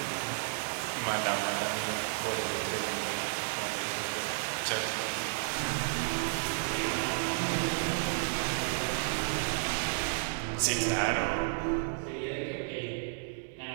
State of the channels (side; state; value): left; silent; 56 dB below the other